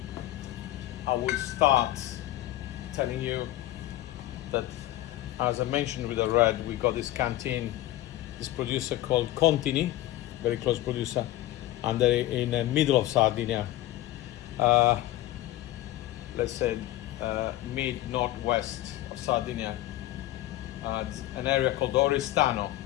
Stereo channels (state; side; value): quieter; right; 15.1 dB